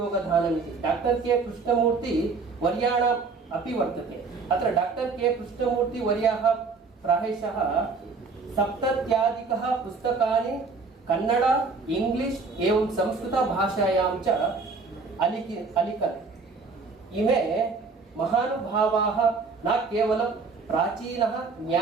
इति डॉक्टर के कृष्णमूर्ति वर्याणाम् अपि वर्तते। अत्र डॉक्टर के कृष्णमूर्ति वर्याः प्रायशः 70 पुस्तकानि कन्नड इंग्लिश एवं संस्कृत भाषायां च अलिखत्। इमे महानुभावाः न केवलं प्राचीनः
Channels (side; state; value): left; quieter; 4.5 dB